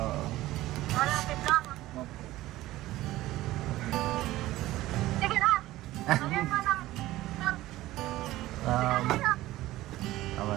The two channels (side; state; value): left; quieter; 16.4 dB